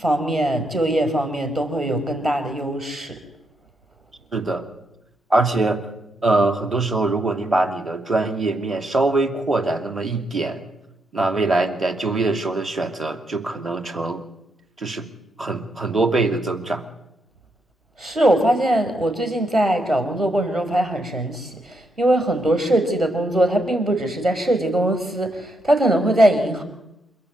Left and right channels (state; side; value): normal; both; correlation 0.79